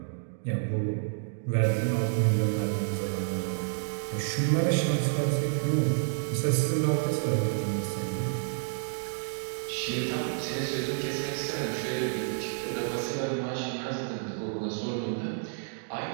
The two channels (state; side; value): silent; left; digital silence